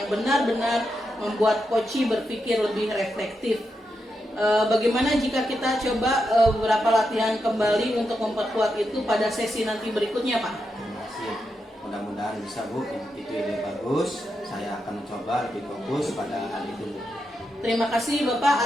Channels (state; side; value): normal; both; correlation 0.85